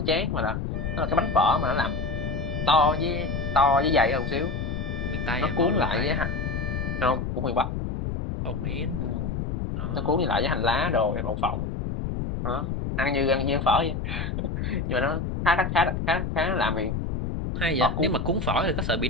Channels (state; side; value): noise; left; rumble, 3 dB below the sound